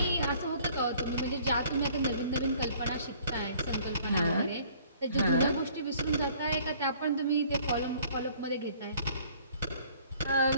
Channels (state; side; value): inverted; both; correlation -0.56